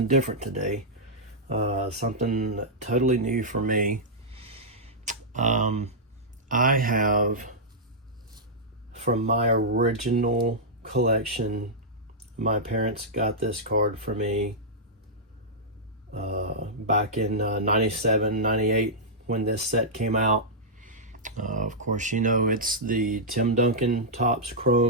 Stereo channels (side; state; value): both; normal; correlation -0.10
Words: different today, something totally new for me. Um, I have, from my original collection, my parents got this card for me back in 97, 98 when this set came out. Of course, you know it's the Tim Duncan Topps